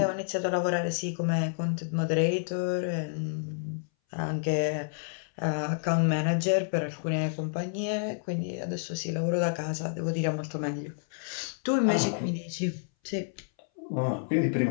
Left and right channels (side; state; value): right; silent; 58 dB below the other